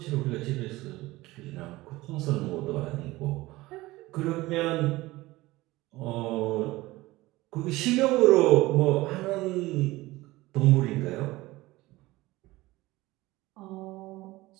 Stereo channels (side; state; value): left; quieter; 19.2 dB